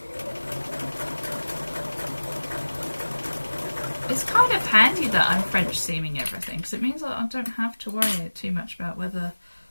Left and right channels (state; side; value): inverted; both; correlation -1.00